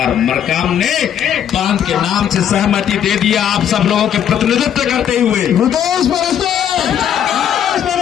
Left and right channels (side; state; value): right; quieter; 9.4 dB